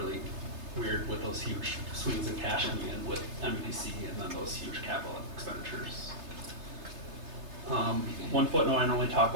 weird with those huge swings in cash coming in with MEDC and then those huge capital expenditures. One footnote I normally talk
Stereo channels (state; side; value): late; left; 3.3 ms